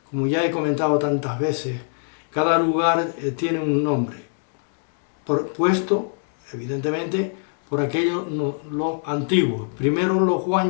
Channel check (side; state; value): right; silent; 63 dB below the other